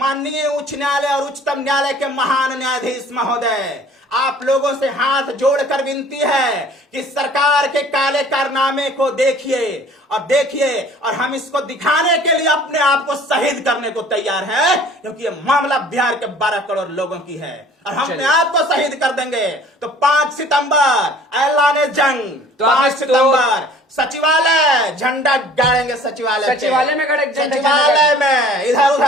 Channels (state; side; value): normal; both; correlation 0.50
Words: उच्च न्यायालय और उच्चतम न्यायालय के महान न्यायाधीश महोदय, आप लोगों से हाथ जोड़कर विनती है कि सरकार के काले कारनामे को देखिए और हम इसको दिखाने के लिए अपने आप को शहीद करने को तैयार हैं, क्योंकि ये मामला बिहार के 12 करोड़ लोगों की है और हम अपने आप को शहीद कर देंगे। तो 5 सितंबर ऐलान जंग, तो 5 सितंबर सचिवालय झंडा गाड़ेंगे, सचिवालय में खड़े झंडा सचिवालय में, इधर